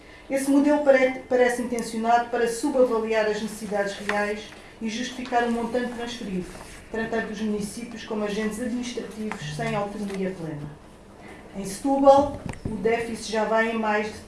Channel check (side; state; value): both; identical; correlation 1.00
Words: Esse modelo parece intencionado para subavaliar as necessidades reais e justificar o montante transferido, tratando os municípios como agentes administrativos sem autonomia plena. Em Setúbal, o déficit já vai em mais